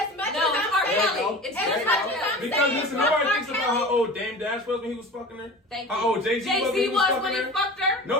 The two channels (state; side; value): normal; both; correlation 0.36